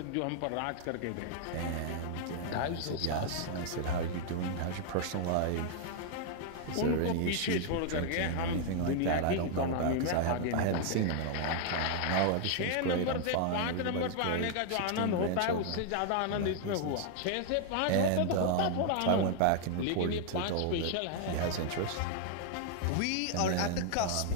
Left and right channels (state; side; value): different; both; correlation 0.00